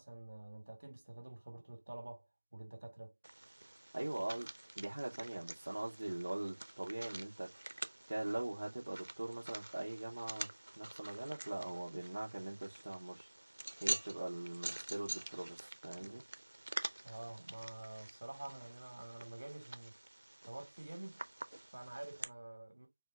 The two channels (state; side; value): inverted; both; correlation -1.00